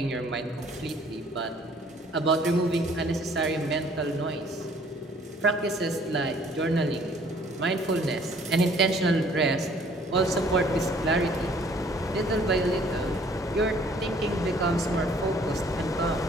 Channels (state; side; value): normal; both; correlation 0.58